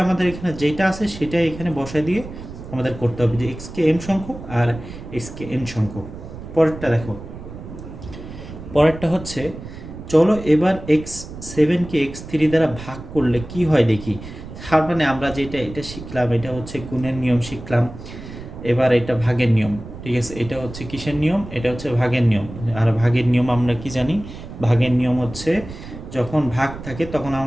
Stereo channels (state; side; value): noise; right; rumble, 13 dB below the sound